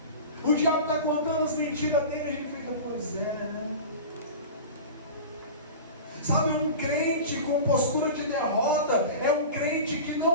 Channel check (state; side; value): inverted; both; correlation -0.32